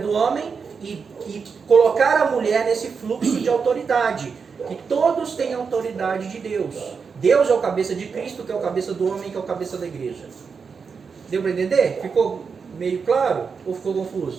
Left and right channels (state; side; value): quieter; left; 5.6 dB